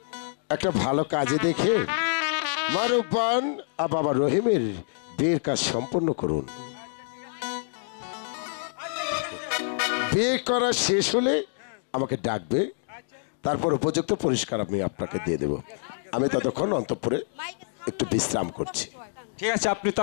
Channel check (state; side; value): silent; right; digital silence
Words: একটা ভালো কাজে দেখে মারুব্বান আর বাবা রহিমের বিয়ের কাজ সম্পন্ন করুন। বিয়ে করা শেষ হলে আমাকে ডাকবে, তারপর উপযুক্ত পুরস্কার আমি আপনাকে দিয়ে দেব। আমি ততক্ষণ অন্তঃপুরে একটু বিশ্রাম করছি। ঠিক আছে, আপনি